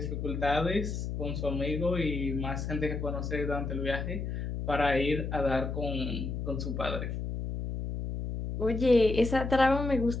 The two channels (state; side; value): noise; left; hum, 4 dB below the sound